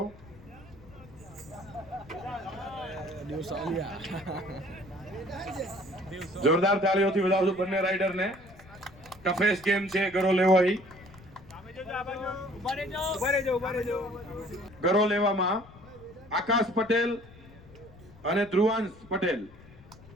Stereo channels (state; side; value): noise; left; rumble, 21 dB below the sound